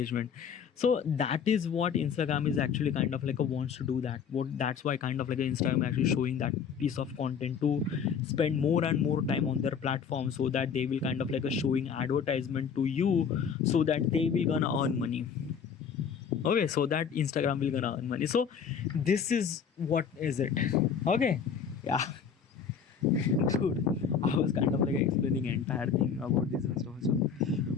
So that is what Instagram is actually kind of like a wants to do that. What that's why kind of like Instagram actually showing that piece of content to spend more and more time on their platform, so that they will kind of like a showing advertisement to you, so that they will gonna earn money. Okay, so that Instagram will gonna earn money. So this is what is it. Okay, yeah. Dude, I was kind of like explaining entire thing about this and stuff. So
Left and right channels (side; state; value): right; quieter; 6.9 dB